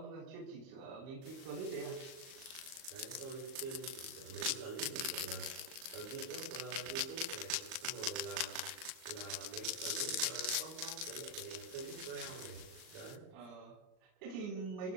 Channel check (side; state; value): left; late; 38 ms